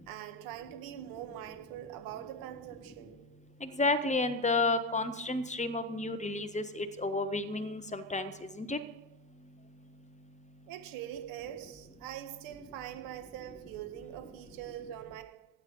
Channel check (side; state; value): both; normal; correlation 0.15